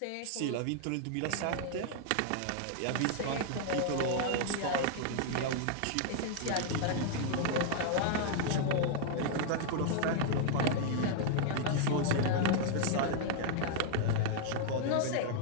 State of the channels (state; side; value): different; both; correlation -0.01